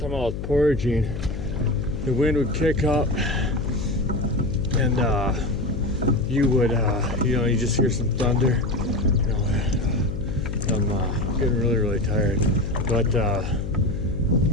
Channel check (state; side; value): noise; left; hum, 5 dB below the sound